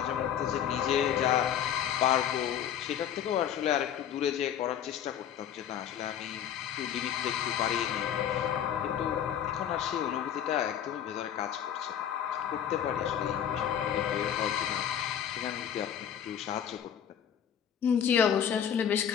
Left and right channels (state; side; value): quieter; right; 9.4 dB